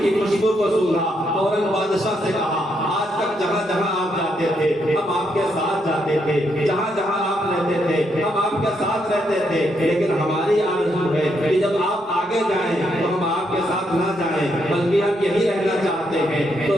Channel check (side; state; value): both; normal; correlation 0.77